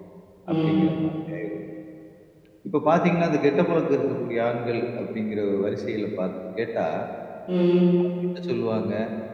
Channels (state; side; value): identical; both; correlation 1.00